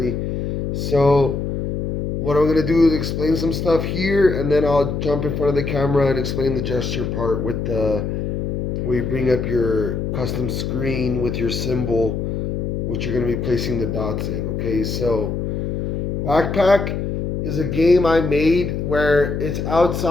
So what I'm gonna do is explain some stuff here, and then I'll jump in front of the camera and explain the gesture part with the where you bring up your custom screen with your symbol, which you're going to be placing the dots in. Okay, so Backpack is a game I made where it's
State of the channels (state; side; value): noise; left; hum, 2 dB below the sound